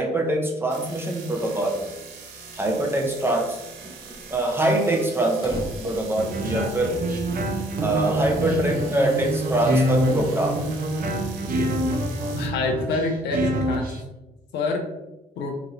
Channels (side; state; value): both; normal; correlation 0.61